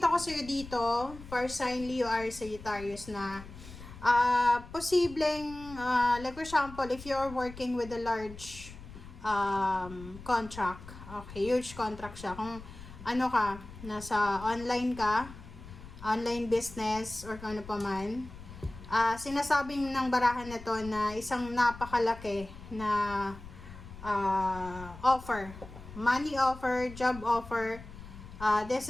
ko sa'yo dito, for sign Leo or Sagittarius na posibleng, like for example, if you're working with a large contract. Okay, huge contract siya. Kung ano ka, nasa online ka, online business, or kung ano pa man, sinasabing ng barahan na to na isang napakalaki na offer. Money offer, job offer.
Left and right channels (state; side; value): noise; left; rumble, 15 dB below the sound